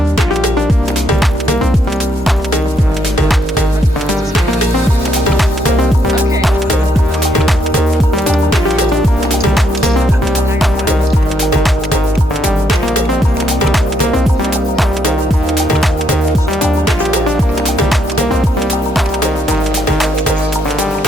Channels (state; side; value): normal; both; correlation 0.74